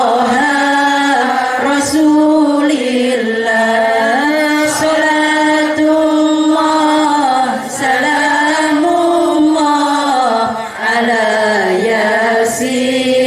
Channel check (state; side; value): identical; both; correlation 1.00